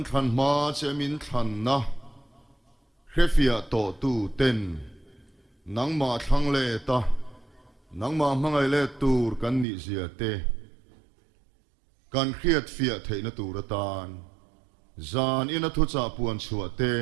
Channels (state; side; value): drops out; left; at 9.7 s